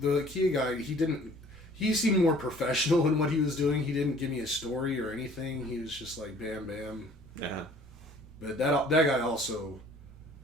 Kia guy, he he seemed more professional in what he was doing. He didn't give me a story or anything. He was just like, bam, bam. Uh-huh. But that guy also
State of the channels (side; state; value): both; normal; correlation 0.53